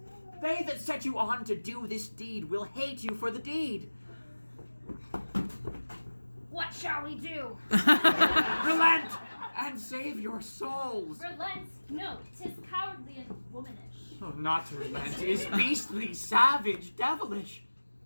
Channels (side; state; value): both; inverted; correlation -1.00